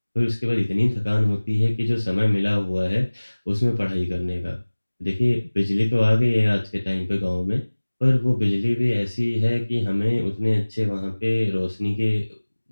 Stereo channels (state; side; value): inverted; both; correlation -1.00